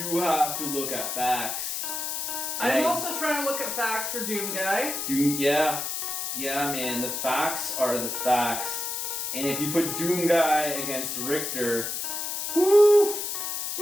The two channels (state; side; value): noise; left; hiss, 3 dB below the sound